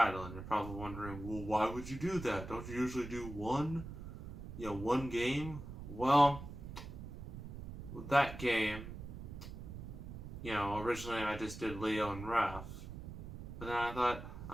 and you're probably wondering, well, why would you do that? Don't you usually do one game? Well, with that game, originally I just did Leo and Raph. But then I thought,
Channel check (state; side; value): noise; right; rumble, 10 dB below the sound